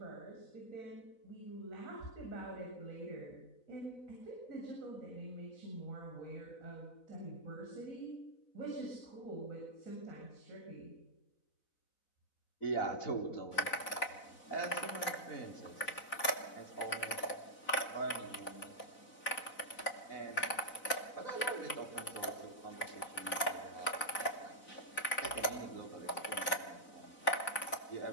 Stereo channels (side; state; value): right; late; 4.0 ms